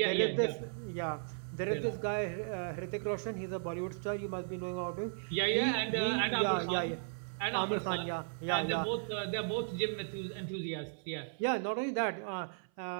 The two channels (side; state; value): left; silent; 54 dB below the other